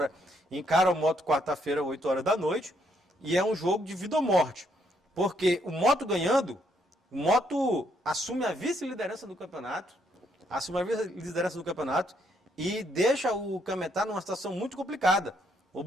encara o Moto quarta-feira, 8 horas da noite. E é um jogo de vida ou morte. Porque o Moto ganhando, o Moto assume a vice-liderança do campeonato. E deixa o Cametá numa situação muito complicada,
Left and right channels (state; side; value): normal; both; correlation 0.73